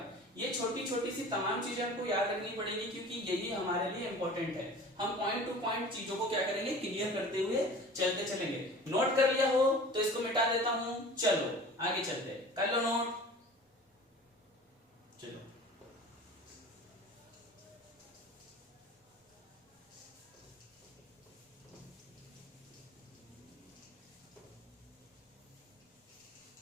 ये छोटी छोटी सी तमाम चीजें आपको याद रखनी पड़ेगी, क्योंकि यही हमारे लिए इंपॉर्टेंट है। हम पॉइंट टू पॉइंट चीजों को क्या करेंगे? क्लियर करते हुए चलते चलेंगे। नोट कर लिया हो तो इसको मिटा देता हूं, चलो आगे चलते, कर लो नोट, चलो।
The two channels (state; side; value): normal; both; correlation 0.41